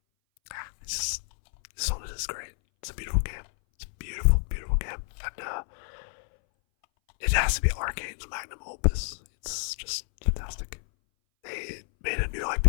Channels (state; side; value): silent; right; 58 dB below the other